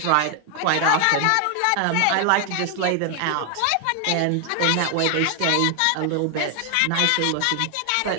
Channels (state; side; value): different; both; correlation 0.00